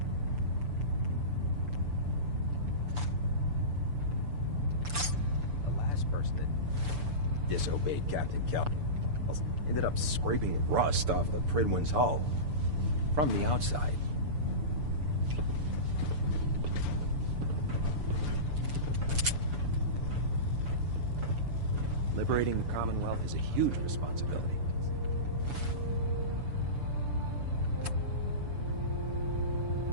The last person that disobeyed Captain Kelp ended up scraping rust off the Pridwin's hull from the outside. Liberating the Commonwealth is a huge responsibility.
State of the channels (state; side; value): late; left; 6.9 ms